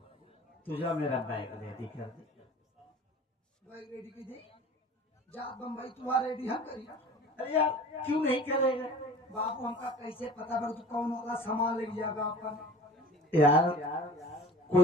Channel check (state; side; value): normal; both; correlation 0.43